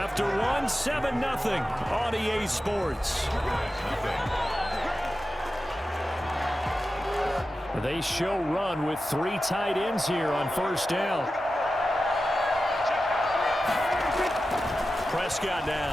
1, 7-0 on EA Sports. They show run with 3 tight ends here on 1st down. Prescott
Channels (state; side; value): normal; both; correlation 0.93